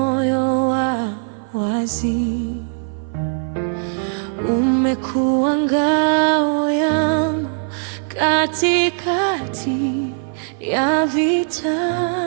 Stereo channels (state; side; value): silent; left; 56 dB below the other